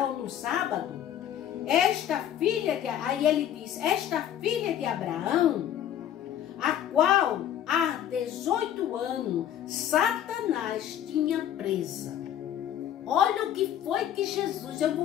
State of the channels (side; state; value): right; quieter; 10.6 dB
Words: no sábado? Aí ele diz, esta filha de Abraão, a qual há 18 anos Satanás tinha presa. Olha o que foi que Jesus, eu